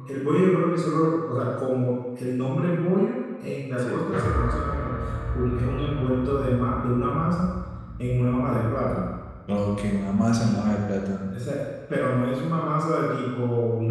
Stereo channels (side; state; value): both; identical; correlation 1.00